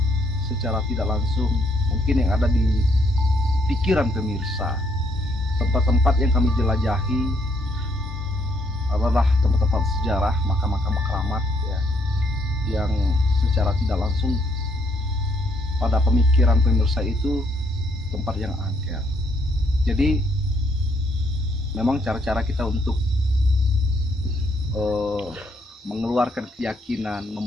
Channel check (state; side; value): normal; both; correlation 0.71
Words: Secara tidak langsung, mungkin yang ada di pikiran pemirsa, tempat-tempat yang kami jelajahi adalah tempat-tempat sejarah, makam-makam keramat ya, yang secara tidak langsung pada pemikiran pemirsa itu tempat yang angker. Jadi memang cara-cara kita untuk mengeluarkan keyakinan,